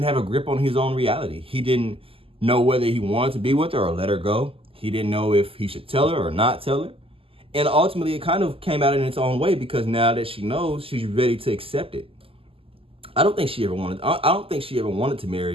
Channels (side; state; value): left; late; 0.26 ms